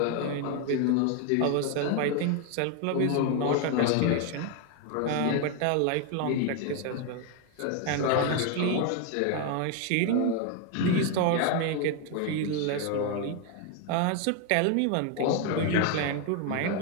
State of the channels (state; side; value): different; both; correlation 0.01